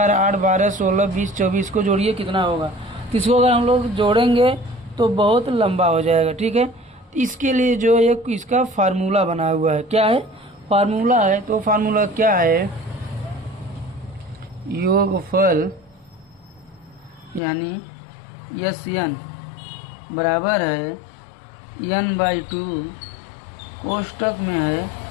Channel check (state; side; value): drops out; right; at 17.4 s